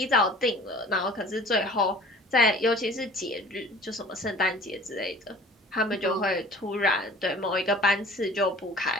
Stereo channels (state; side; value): normal; both; correlation 0.47